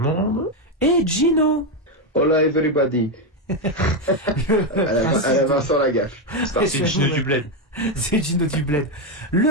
monde. Et Gino. Hola everybody. à la Vincent Lagaffe. C'est Gino du Bled. C'est Gino du Bled.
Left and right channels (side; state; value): both; normal; correlation 0.07